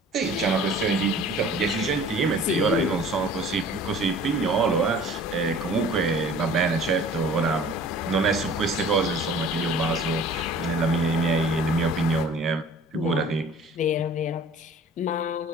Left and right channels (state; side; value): normal; both; correlation 0.47